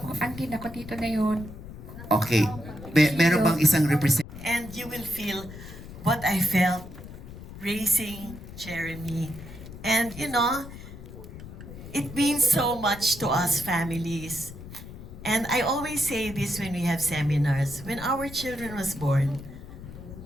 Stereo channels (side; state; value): left; noise; rumble, 13 dB below the sound